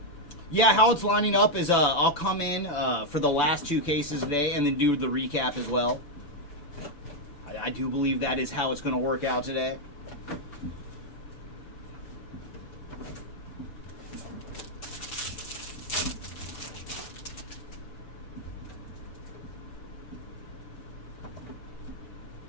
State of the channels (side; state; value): right; late; 6.9 ms